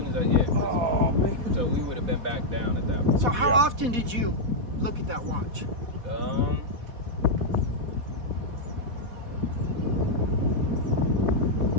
as I, yeah. oh man. So we would have been back down at that point. So how Yeah. often did you look at that watch?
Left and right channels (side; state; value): left; late; 4.1 ms